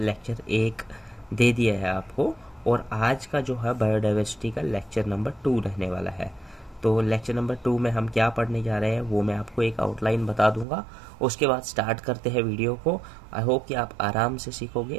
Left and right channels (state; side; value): drops out; left; at 10.7 s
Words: 1 दे दिया है आपको, और आज का जो है बायोडाइवर्सिटी का लेक्चर नंबर 2 रहने वाला है। तो लेक्चर नंबर 2 में हम क्या पढ़ने जा रहे हैं वो मैं आपको एक आउटलाइन बता दूंगा, उसके बाद स्टार्ट करते हैं वीडियो को। आई होप कि आप आराम से